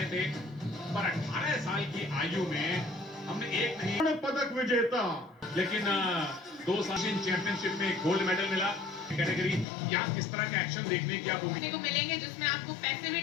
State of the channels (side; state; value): right; drops out; at 9.7 s